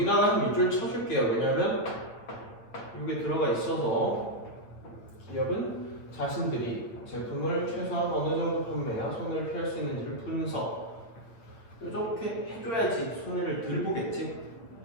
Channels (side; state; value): right; late; 8.9 ms